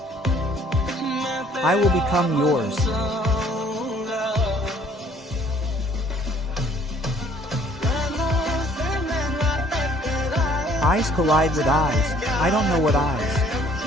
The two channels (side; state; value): both; normal; correlation 0.59